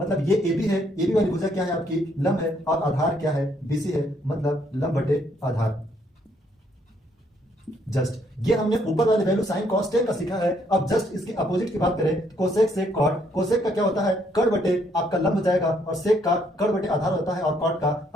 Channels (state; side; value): normal; both; correlation 0.69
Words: ये ए बी है, ए बी वाली भुजा क्या है आपकी? लंब है, और आधार क्या है? बीसी है, मतलब लंब बटे आधार। जस्ट ये हमने ऊपर वाले वैल्यू साइन कॉस टेन का सीखा है। अब जस्ट इसके अपोजिट की बात करें तो कोसेक सेक कॉट। कोसेक का क्या होता है? कर्ण बटे आपका लंब हो जाएगा, और सेक का कर्ण बटे आधार होता है, और कॉट का